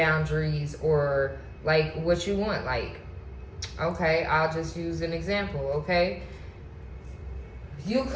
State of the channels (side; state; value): both; identical; correlation 1.00